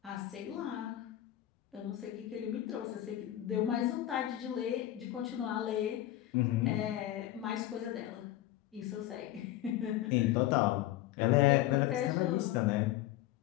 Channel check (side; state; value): right; quieter; 13.9 dB